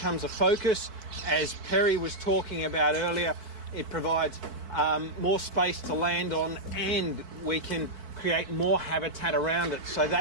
a focus. As Perry was talking about earlier, it provides more space to land on, and we can create more habitat around it, so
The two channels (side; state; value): left; late; 4.6 ms